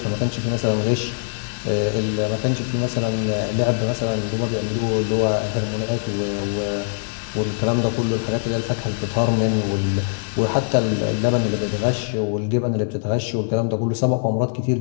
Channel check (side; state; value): right; silent; 64 dB below the other